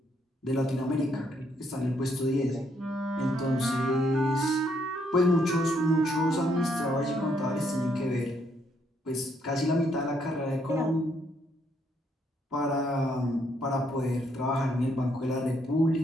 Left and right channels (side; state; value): both; normal; correlation 0.72